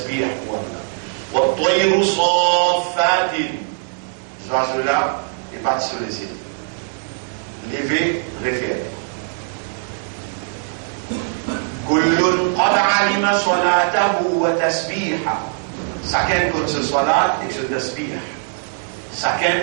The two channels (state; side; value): silent; left; 65 dB below the other